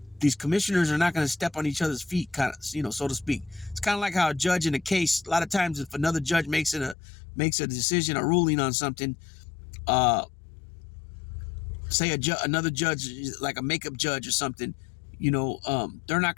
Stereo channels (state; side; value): drops out; right; at 7.0 s